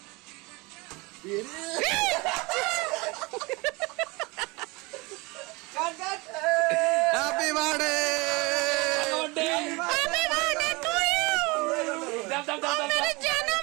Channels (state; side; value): quieter; left; 25.2 dB